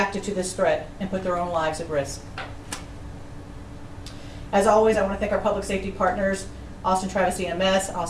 to this threat and put their own lives at risk. As always, I want to thank our public safety partners, Austin Travis EMS,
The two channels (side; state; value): both; identical; correlation 1.00